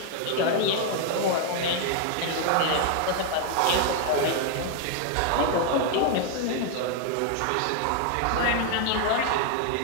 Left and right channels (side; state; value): both; different; correlation 0.00